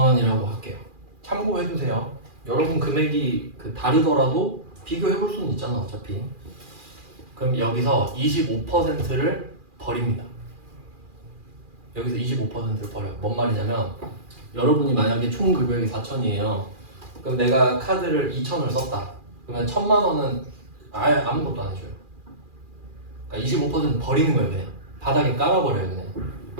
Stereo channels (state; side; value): late; left; 2.4 ms